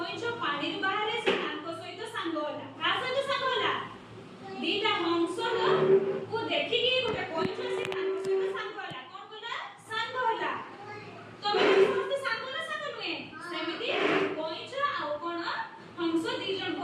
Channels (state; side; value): identical; both; correlation 1.00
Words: पानी बाहरे से तांको सहित सांग होला का सहित सांग होला दीटा हंस को देखि कि गोटे कइछ से तांको सहित सांग होला कोन होला सांग होला तमे समस्त सांग ना सांग नुए सेमिति कइछ आ कोन हंस दी जण